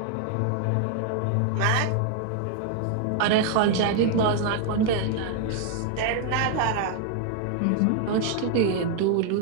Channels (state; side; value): different; both; correlation 0.00